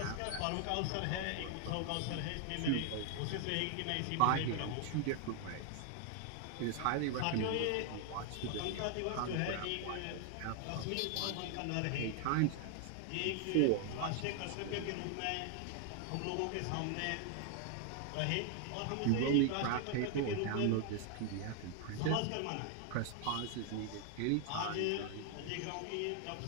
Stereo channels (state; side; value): different; both; correlation 0.00